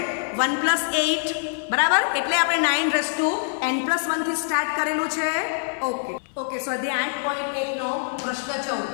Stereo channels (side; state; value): right; silent; 58 dB below the other